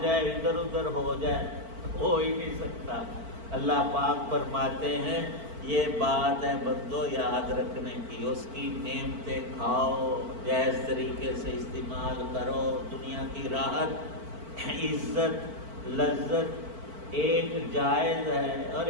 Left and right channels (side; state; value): left; late; 4.5 ms